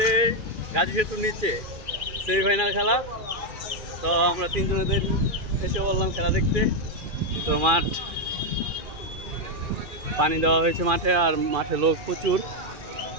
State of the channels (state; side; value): late; left; 2.4 ms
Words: গাজী সেতুর নিচে সেমিফাইনাল খেলা। তো আমরা তিনজনের এসে বললাম খেলা দেখতে। তো মাঠ পানি দেওয়া হয়েছে মাঠে, আর মাঠে লোক প্রচুর।